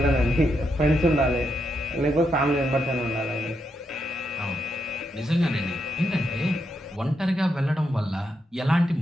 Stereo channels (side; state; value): both; normal; correlation 0.82